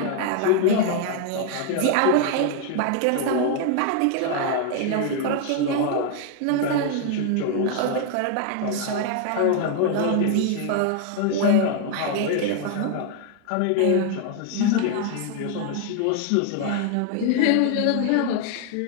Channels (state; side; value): different; both; correlation 0.00